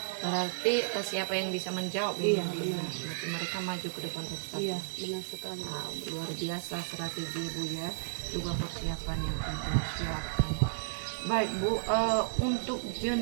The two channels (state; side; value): silent; left; 56 dB below the other